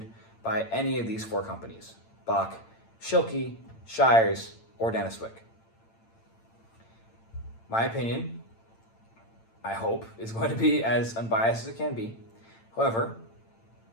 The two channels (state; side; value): late; right; 8.8 ms